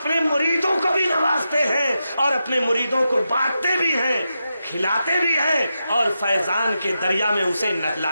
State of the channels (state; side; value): inverted; both; correlation -0.88